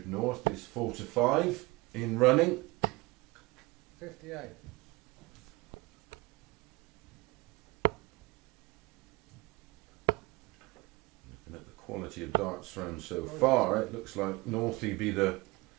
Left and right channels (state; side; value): quieter; left; 23.1 dB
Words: North is 4 to 5 in running. 58. Looking at the quality of darts thrown so far, it looks like Northie be the